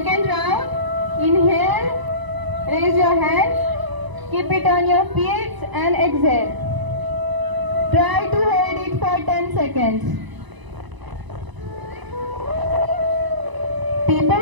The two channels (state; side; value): late; left; 1.0 ms